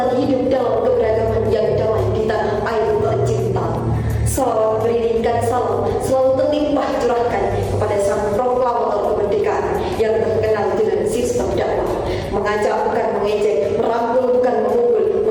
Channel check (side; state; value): both; identical; correlation 1.00